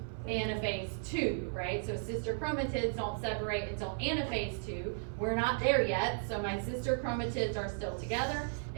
Anaphase 2, right? So sister chromatids don't separate until anaphase 2. We're not there yet, so my sister chromatids are still together.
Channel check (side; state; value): left; silent; 54 dB below the other